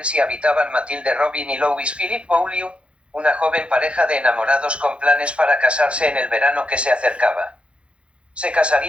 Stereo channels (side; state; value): left; late; 0.059 ms